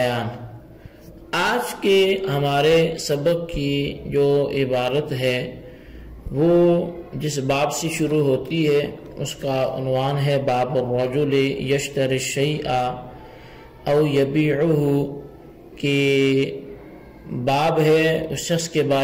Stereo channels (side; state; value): both; identical; correlation 1.00